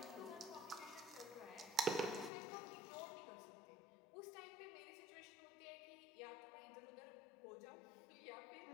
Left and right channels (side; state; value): right; drops out; at 2.3 s